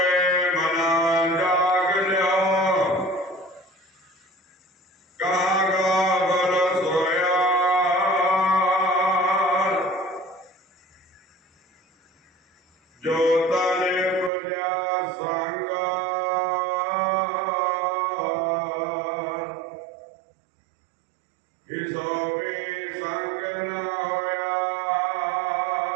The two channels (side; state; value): left; drops out; at 14.3 s